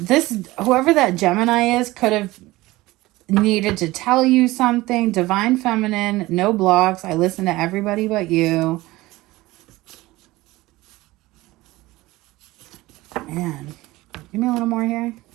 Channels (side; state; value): left; quieter; 19.1 dB